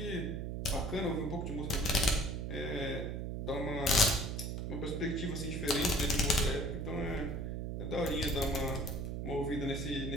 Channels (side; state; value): right; noise; hum, 3 dB below the sound